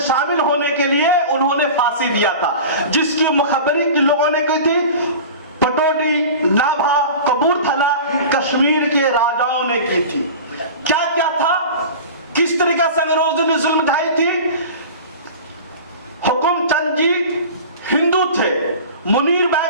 होने के लिए उन्होंने फांसी दिया था, जिसकी मुखबरी किन लोगों ने की थी? पटौदी, नाभा, कपूरथला, कश्मीर के राजाओं ने की थी। क्या क्या था? किस तरीके से अंग्रेजों ने जुल्म ढाई थी? हुकुमचंद जी हिंदू थे, मुनीर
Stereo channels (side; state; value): both; inverted; correlation -0.35